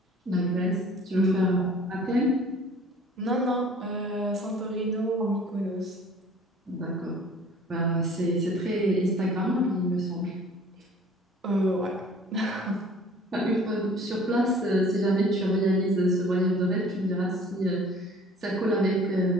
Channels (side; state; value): both; normal; correlation 0.50